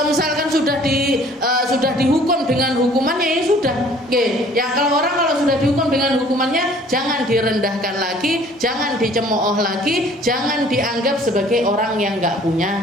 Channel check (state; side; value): normal; both; correlation 0.54